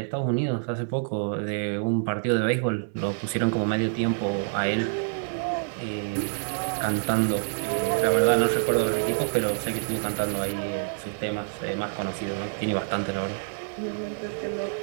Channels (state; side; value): silent; left; 60 dB below the other